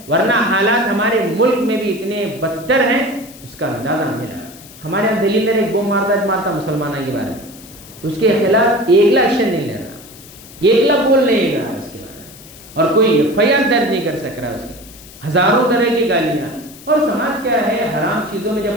ورنہ حالات ہمارے ملک میں بھی اتنے بدتر ہیں اس کا اندازہ نہیں لگا۔ ہمارے یہاں دلی میں ایک بم مارتا مسلمانوں کے بارے میں، اس کے خلاف ایک ایکشن نہیں لے رہا، ایک بول نہیں رہا اس کے بارے میں، اور کوئی FIR درج نہیں کر سک رہا اس کے، ہزاروں طرح کی گالیاں۔ اور سماج کیا ہے، حرام چیزوں میں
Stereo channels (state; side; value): noise; left; hiss, 20 dB below the sound